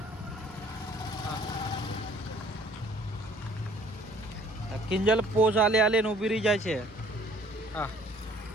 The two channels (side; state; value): both; normal; correlation 0.57